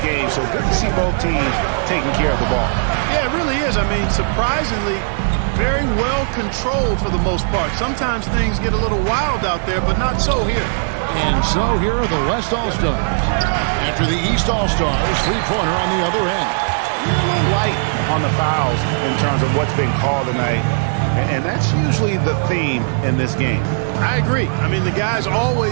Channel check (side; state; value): left; silent; 62 dB below the other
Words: game. So good to see both teams taking care of the ball. Yeah, it really is. I mean, surprisingly, very well controlled for the most part. Sometimes things get a little wild out there, but not so here. And so here are the West All-Stars. After the East All-Stars, three-pointer on the other end. A little light on the fouls in terms of what's been called tonight. And that's usually the theme in this game. I agree. I mean, the guys